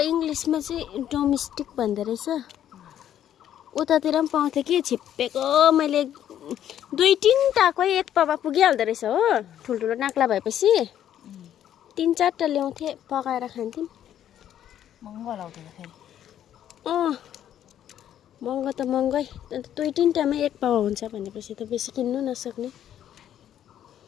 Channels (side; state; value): right; quieter; 10.7 dB